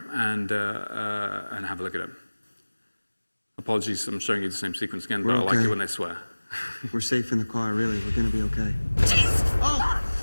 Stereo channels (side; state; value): both; inverted; correlation -1.00